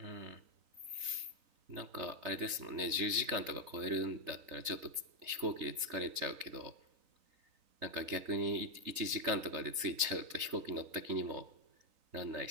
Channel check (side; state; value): left; late; 3.9 ms